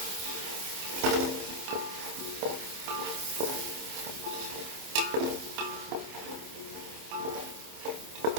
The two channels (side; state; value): left; late; 26 ms